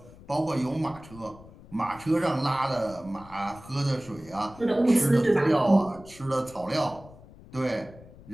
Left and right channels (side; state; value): left; noise; rumble, 20 dB below the sound